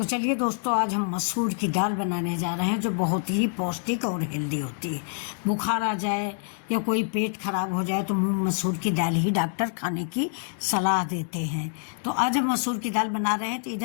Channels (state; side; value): silent; right; 61 dB below the other